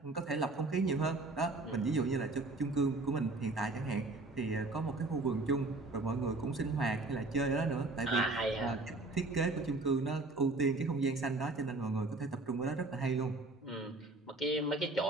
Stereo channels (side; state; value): left; quieter; 3.1 dB